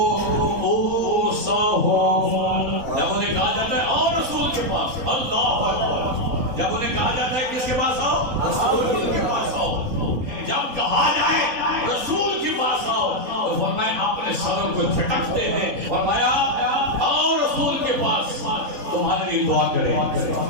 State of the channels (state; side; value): late; left; 3.8 ms